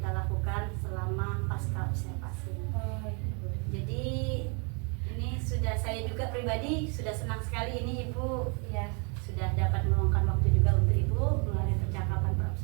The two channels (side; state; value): left; quieter; 34.7 dB